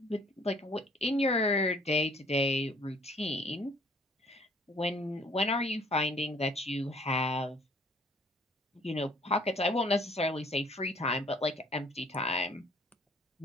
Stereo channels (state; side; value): normal; both; correlation 0.58